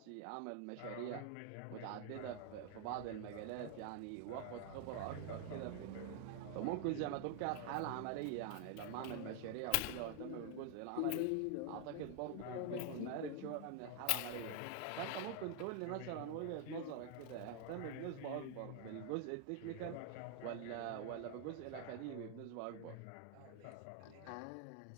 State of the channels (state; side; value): different; both; correlation 0.00